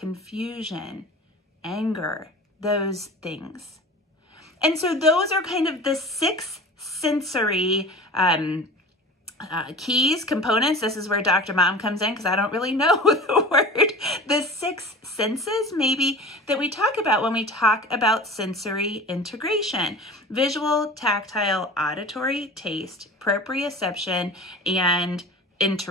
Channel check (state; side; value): normal; both; correlation 0.37